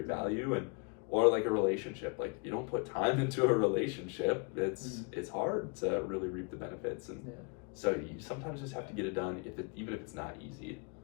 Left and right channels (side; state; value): right; quieter; 31.7 dB